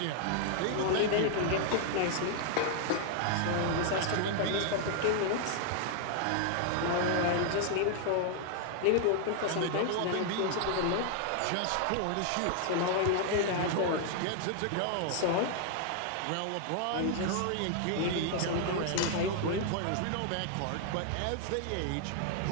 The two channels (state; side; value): different; both; correlation 0.00